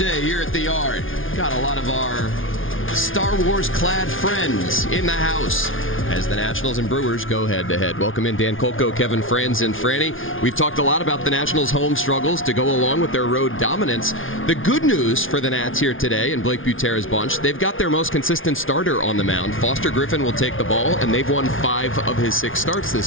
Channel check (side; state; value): right; late; 0.58 ms